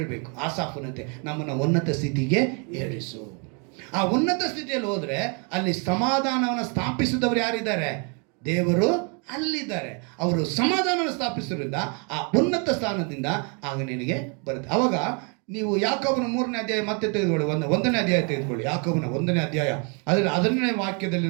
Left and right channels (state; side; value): quieter; left; 36.0 dB